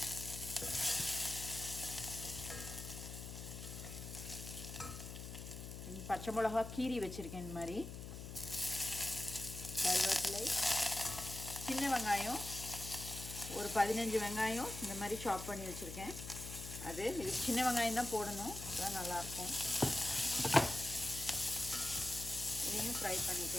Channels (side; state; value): left; noise; hum, 9 dB below the sound